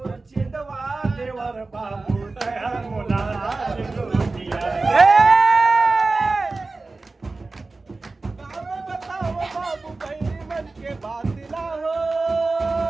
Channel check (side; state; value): left; quieter; 3.5 dB